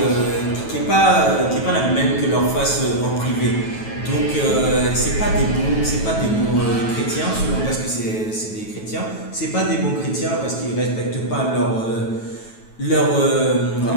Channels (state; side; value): late; right; 9.2 ms